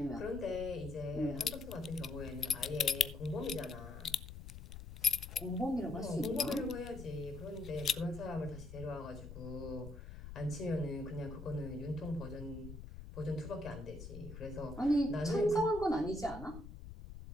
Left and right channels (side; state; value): left; noise; rumble, 11 dB below the sound